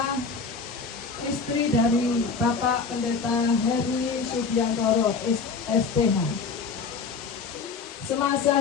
istri dari Bapak Pendeta Heri Subiantoro STH.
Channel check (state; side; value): quieter; right; 5.0 dB